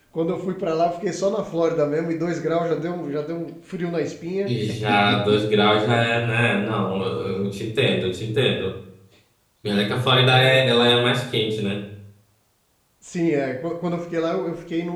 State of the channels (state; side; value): identical; both; correlation 1.00